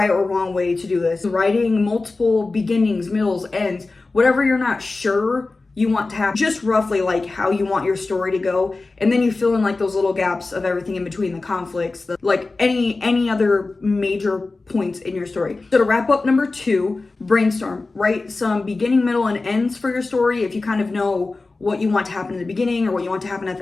or wrong way to do this. Writing multiple beginnings, middles, ends, whatever you're not sure you want to have, just roughly like how you want your story to go, and then you fill in like those little gaps of everything in between, the conflicts, like any other major points in your story. So to wrap up number 2, brainstorm. Write some beginning, middle, and ends for your story. If you kind of know what you want to happen in the beginning or what you want to happen at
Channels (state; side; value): quieter; right; 3.5 dB